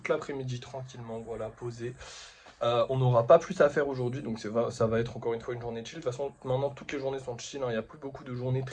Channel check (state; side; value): identical; both; correlation 1.00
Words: l'après-midi, tranquillement, voilà, posé. On n'aura pas plus à faire aujourd'hui, donc ça va être encore une fois une journée chill. De toute façon, maintenant, toutes les journées sont chill. Hein. Il n'y a plus beaucoup de journées